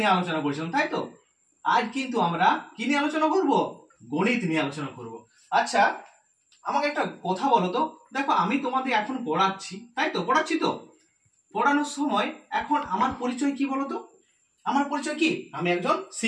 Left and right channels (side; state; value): both; identical; correlation 1.00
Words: আলোচনা করেছিলাম, তাই তো? আজ কিন্তু আমরা কি নিয়ে আলোচনা করব? গণিত নিয়ে আলোচনা করব। আচ্ছা, আমাকে একটা কথা বলো তো। দেখো, আমি তোমাদের এখন পড়াচ্ছি, তাই তো? পড়াচ্ছি তো? পড়ানোর সময় এখন আমার পরিচয় কি বলতো? আমার পরিচয় কি? আমি একজন